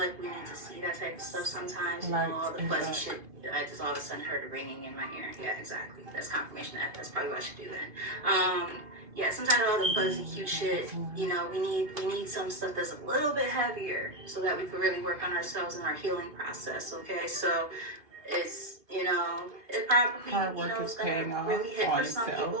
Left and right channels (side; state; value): left; late; 2.5 ms